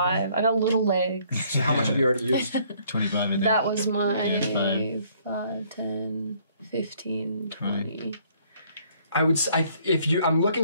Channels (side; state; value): both; inverted; correlation -0.63